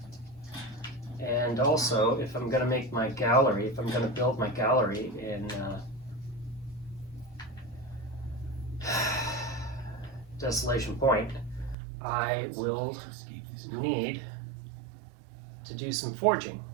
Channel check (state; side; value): drops out; left; at 11.8 s